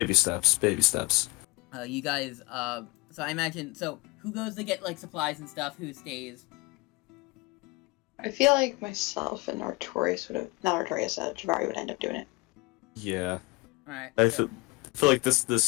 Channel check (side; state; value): right; quieter; 24.2 dB